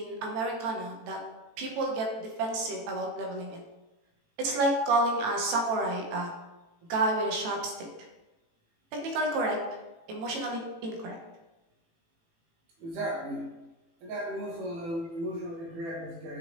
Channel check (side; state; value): left; late; 18 ms